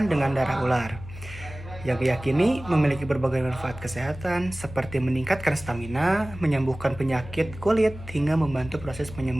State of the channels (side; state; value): left; noise; hum, 14 dB below the sound